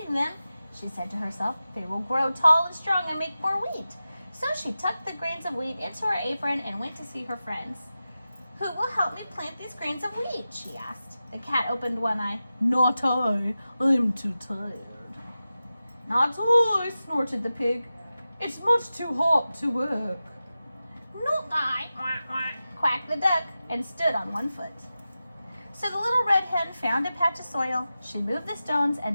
them, she said to herself, they will grow tall and strong and make more wheat. So she tucked the grains of wheat into her apron and went to see her friends. Who will help me plant these grains of wheat? She asked. The cat opened one eye. Not I. I'm too tired. Not I, snorted the pig. It's much too hot to work. Not I, quacked the duck and stood on one foot. So the little red hen found a patch of soil. She moved the stones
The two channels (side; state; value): both; inverted; correlation -0.93